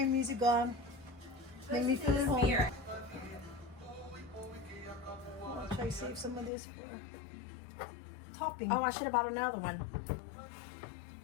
music on. Make me feel at home. I'll try to save some of this for topping. Oh, I should have bought another one.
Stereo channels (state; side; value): drops out; right; at 6.5 s